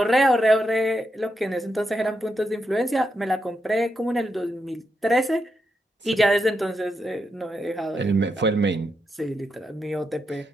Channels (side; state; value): both; normal; correlation 0.83